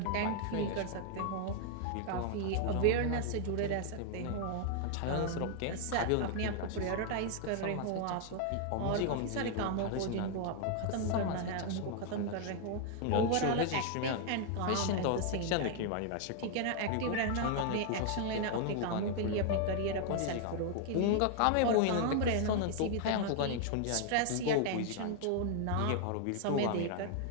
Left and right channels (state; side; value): different; both; correlation 0.00